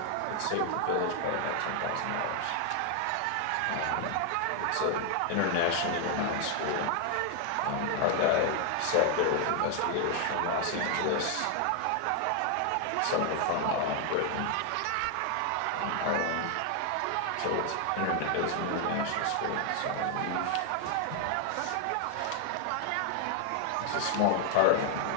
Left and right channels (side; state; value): both; different; correlation 0.00